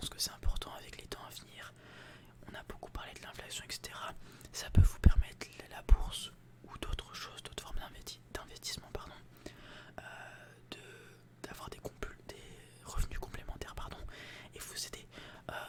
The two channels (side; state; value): both; identical; correlation 1.00